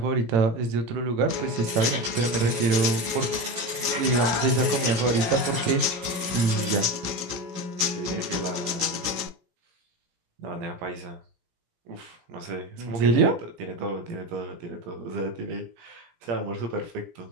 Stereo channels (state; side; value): late; left; 17 ms